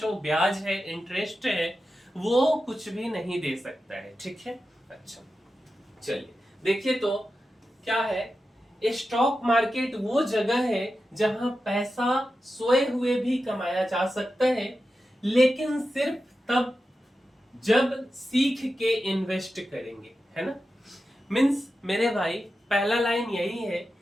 ब्याज है, इंटरेस्ट है, वो कुछ भी नहीं दे सकता है। ठीक है, अच्छा चलिए देखिए तो क्या है। स्टॉक मार्केट वो जगह है जहां पैसा सोए हुए भी कमाया जा सकता है, लेकिन सिर्फ तब जब सीख के इन्वेस्ट करेंगे, है ना। मीन्स मेरे भाई पहला लाइन यही है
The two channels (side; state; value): both; normal; correlation 0.91